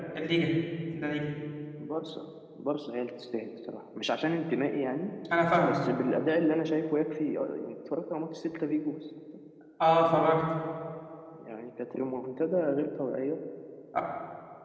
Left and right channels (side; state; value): both; identical; correlation 1.00